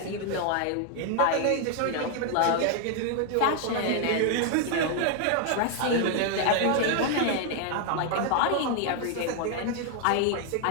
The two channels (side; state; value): both; different; correlation 0.00